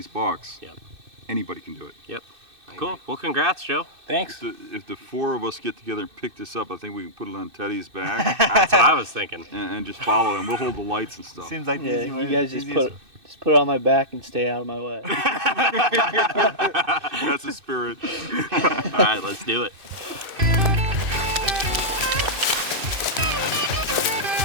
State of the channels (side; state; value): left; late; 2.6 ms